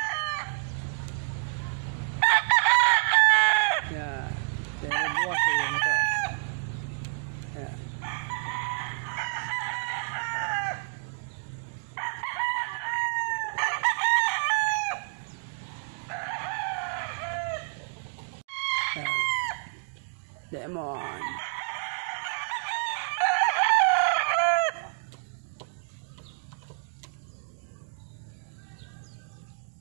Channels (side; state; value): left; silent; digital silence